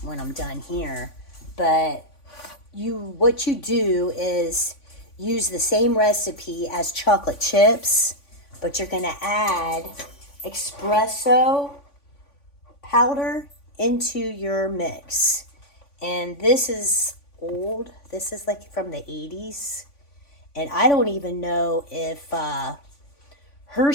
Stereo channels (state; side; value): late; right; 3.5 ms